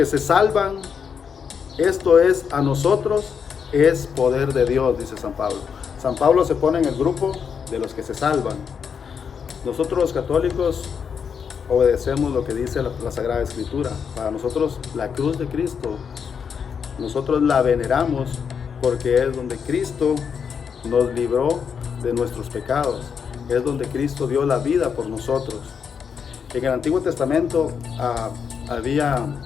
se salvan, esto es a nosotros, es poder de Dios, dice San Pablo. San Pablo se pone en el grupo de los que se salvan. Nosotros los católicos obedecemos lo que dice la Sagrada Escritura. Para nosotros la cruz de Cristo, nosotros la veneramos porque es donde Cristo nos libró de nuestros pecados. Es donde Cristo dio la vida por nosotros. En el Antiguo Testamento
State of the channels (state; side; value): quieter; right; 6.8 dB